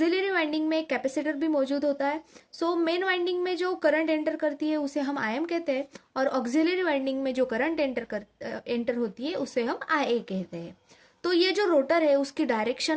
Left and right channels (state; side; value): identical; both; correlation 1.00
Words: वाइंडिंग में एक कैपेसिटर भी मौजूद होता है. मेन वाइंडिंग में जो करंट एंटर करती है उसे हम आईएम कहते हैं और ऑक्सिलरी वाइंडिंग में जो करंट एंटर होती है उसे हम आईए कहते हैं. तो ये जो रोटर है उसकी